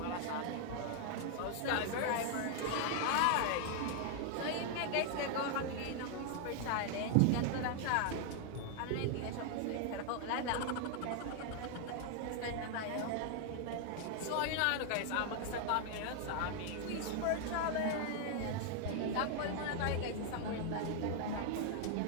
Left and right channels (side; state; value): both; different; correlation 0.00